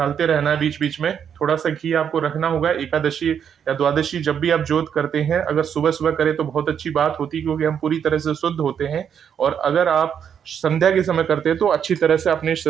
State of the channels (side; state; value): left; quieter; 8.1 dB